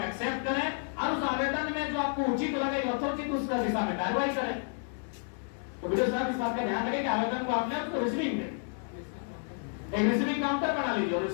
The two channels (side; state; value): right; silent; 57 dB below the other